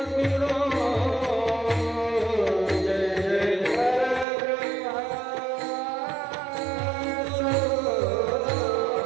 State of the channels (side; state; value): left; drops out; at 4.2 s